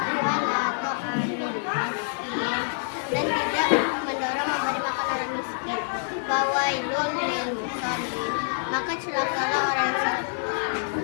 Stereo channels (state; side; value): silent; right; digital silence